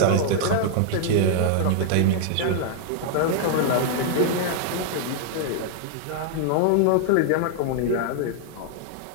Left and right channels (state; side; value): different; both; correlation -0.01